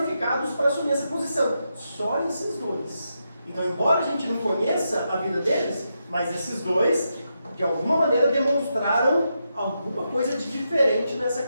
para assumir essa posição. Só esses dois. Então, embora a gente não conheça a vida deles, mas esses dois, de alguma maneira, demonstraram alguma coisa de diferente nessa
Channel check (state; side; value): inverted; both; correlation -0.84